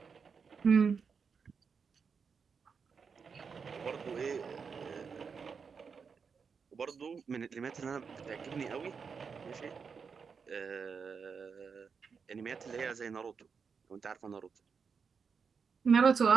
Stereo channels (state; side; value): quieter; left; 5.8 dB